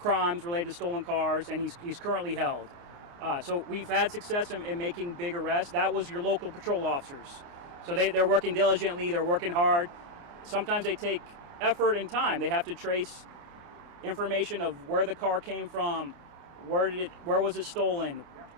related to stolen cars, and he's currently held. So we've had success in making big arrests. That was your local patrol officers. So they're working diligently, they're working hard. Sometimes they take effort and time. They have to trace information of where the car came from, where was it stolen,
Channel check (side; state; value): left; late; 29 ms